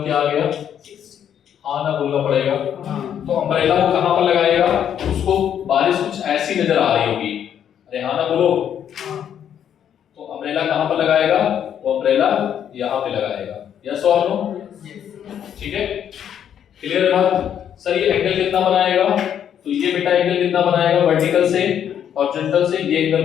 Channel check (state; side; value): quieter; right; 9.3 dB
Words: क्या आ गया? हाँ ना बोलना पड़ेगा। हाँ। तो अम्ब्रेला को कहाँ पर लगाएगा? उसको बारिश कुछ ऐसी नजर आ रही होगी। अरे हाँ ना बोलो। हाँ। तो अम्ब्रेला कहाँ पर लगाएगा? वो अम्ब्रेला यहाँ पे लगाएगा। यस और नो? ठीक है, क्लियर है बात? सर ये एंगल कितना बनाएगा? तो ये बेटा एंगल कितना बनाएगा? वर्टिकल से हॉरिजॉन्टल से ये एंगल